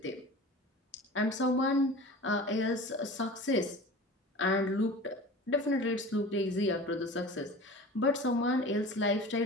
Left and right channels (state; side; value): normal; both; correlation 0.37